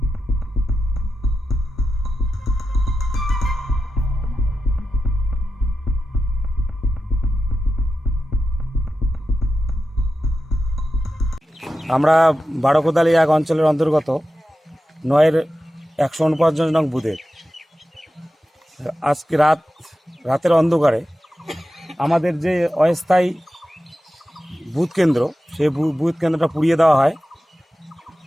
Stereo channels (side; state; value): both; normal; correlation 0.91